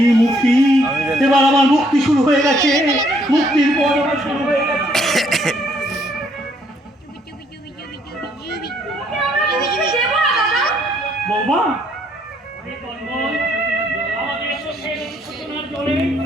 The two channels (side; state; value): both; normal; correlation 0.68